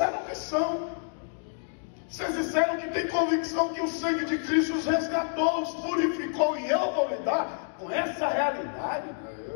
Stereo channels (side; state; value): right; silent; digital silence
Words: que são. Vocês disseram que tem convicção que o sangue de Cristo os resgatou, os purificou, e eu vou lidar com essa realidade.